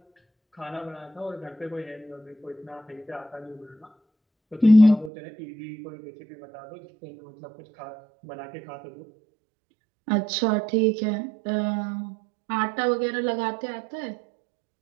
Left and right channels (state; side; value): drops out; left; at 5.1 s